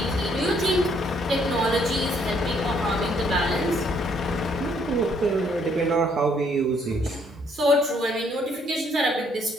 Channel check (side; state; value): both; normal; correlation 0.68